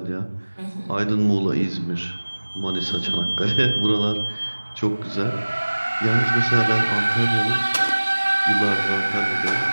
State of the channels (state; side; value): inverted; both; correlation -1.00